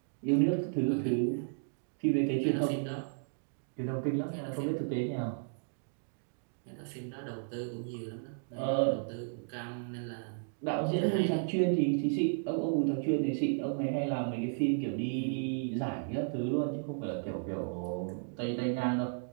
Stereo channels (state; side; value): silent; left; digital silence